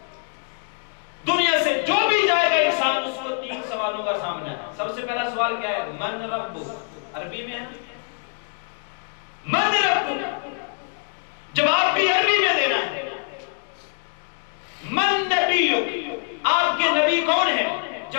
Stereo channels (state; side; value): silent; right; 63 dB below the other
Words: دنیا سے جو بھی جائے گا انسان اس کو 3 سوالوں کا سامنا ہے۔ سب سے پہلا سوال کیا ہے؟ من رب، عربی میں ہے من رب، جواب بھی عربی میں دینا ہے۔ من نبی، آپ کے نبی کون ہے؟